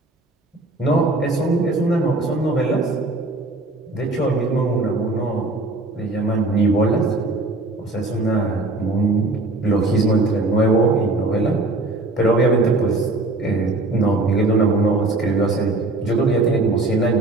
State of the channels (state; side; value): quieter; left; 3.0 dB